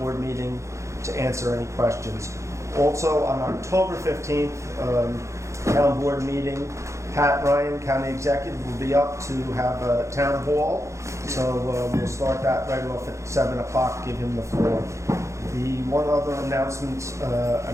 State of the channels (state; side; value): late; left; 0.14 ms